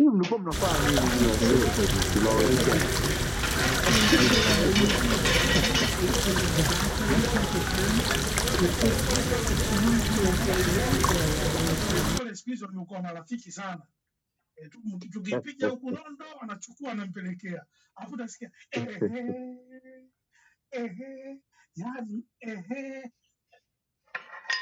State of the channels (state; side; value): identical; both; correlation 1.00